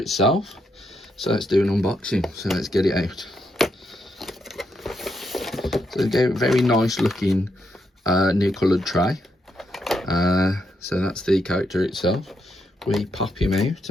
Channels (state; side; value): normal; both; correlation 0.80